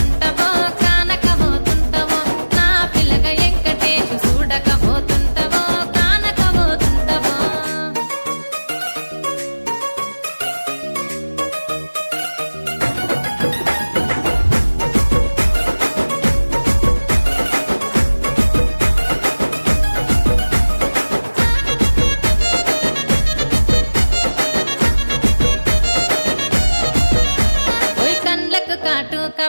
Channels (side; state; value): both; inverted; correlation -1.00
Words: కానకపోతుంటవో నా పిల్లగా ఎంకటేశు చూడకపోతుంటవో కానకపోతుంటవో కాటుక